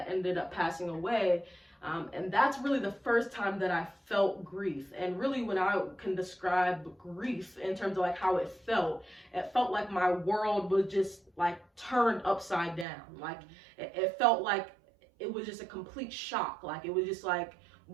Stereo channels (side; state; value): left; drops out; at 12.9 s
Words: ended up passing away. And that's really the first time that I felt grief. And really, when I can describe grief in terms of like how it felt like my world was just like turned upside down. Like it felt like it was just a complete shock. Like it was just like,